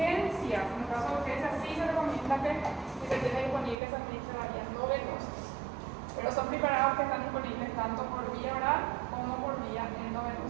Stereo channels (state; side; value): drops out; left; at 3.8 s